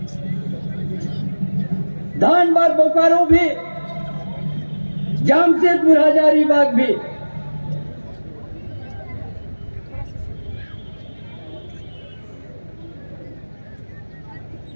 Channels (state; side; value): inverted; both; correlation -1.00